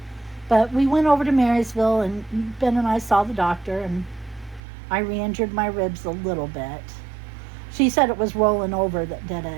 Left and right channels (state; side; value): drops out; left; at 4.6 s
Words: but we went over to Marysville and Ben and I saw the doctor and I re-injured my ribs a little bit. She said it was rolling over that did